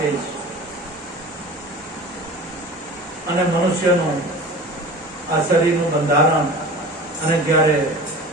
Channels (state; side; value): normal; both; correlation 0.37